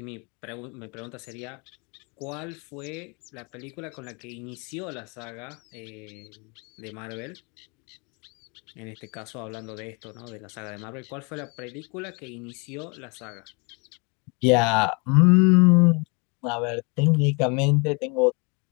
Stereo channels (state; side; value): quieter; right; 31.8 dB